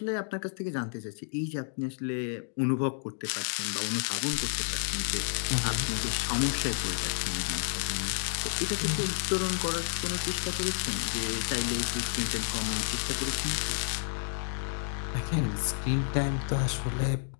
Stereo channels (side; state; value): right; silent; 57 dB below the other